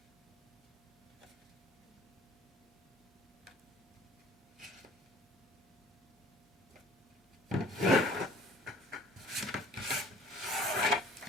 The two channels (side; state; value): both; normal; correlation 0.51